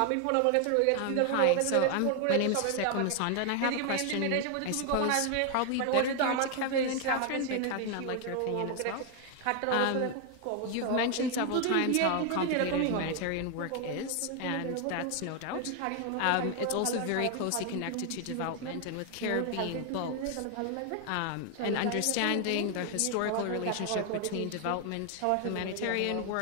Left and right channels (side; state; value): both; different; correlation 0.01